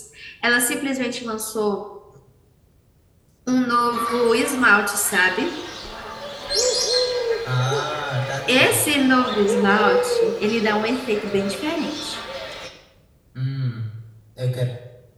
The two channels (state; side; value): identical; both; correlation 1.00